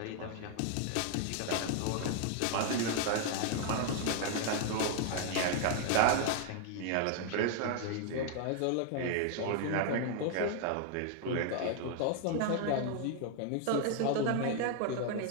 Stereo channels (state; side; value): different; both; correlation 0.00